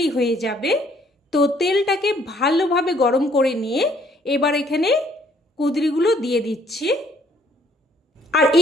হয়ে যাবে। তো তেলটাকে ভালোভাবে গরম করে নিয়ে এবার এখানে কুঁদরিগুলো দিয়ে দিচ্ছি। আর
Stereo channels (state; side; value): normal; both; correlation 0.63